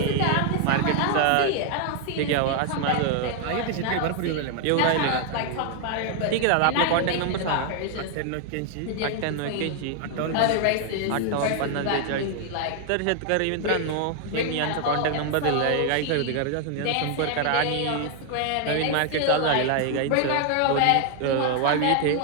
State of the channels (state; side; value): different; both; correlation 0.00